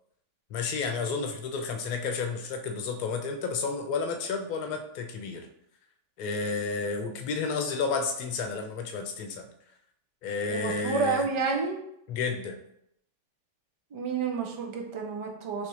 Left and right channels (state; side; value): late; right; 3.4 ms